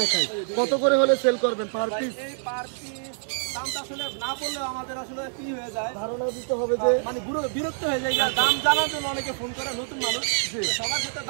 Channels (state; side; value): silent; left; digital silence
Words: কত করে হলে সেল করবেন পার ভাই পিস? এই পার পিস দামটা আসলে না বললে আমাদের আসলে কি হয়ে যায়, ধারণা দিতে হবে যে মানে বিরক্ত হয়ে যায়। আর দাম জানার জন্য অনেকে ফোন করে, নতুন মানুষ সবার ক্ষেত্রে